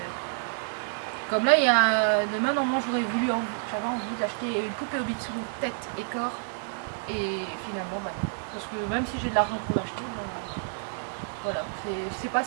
Comme là, demain, normalement, j'avais envie d'acheter une poupée Obitsu tête et corps. Et finalement, bah, parce que même si j'ai de l'argent pour l'acheter, bah, voilà, c'est pas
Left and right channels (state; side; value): silent; left; 59 dB below the other